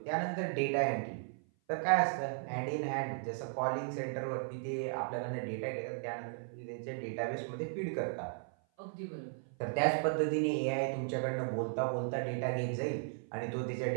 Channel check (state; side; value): silent; left; 54 dB below the other